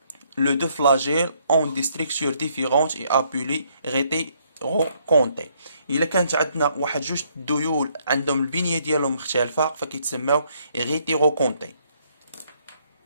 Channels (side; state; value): both; inverted; correlation -0.69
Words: les deux flagelles ont des structures différentes et appelées rétérocontées. الا كانت عندنا واحد جوج ديول عندهم البنيه ديالهم مختلفه فكيتسماو rétérocontées.